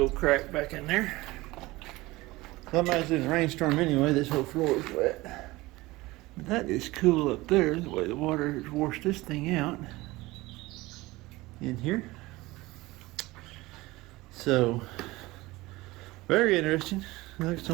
crack back in there. Somebody's in a rainstorm anyway. This whole floor is wet. But that is cool up there, the way the water has washed this thing out in here. So, very interesting. Like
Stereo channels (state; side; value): quieter; left; 20.2 dB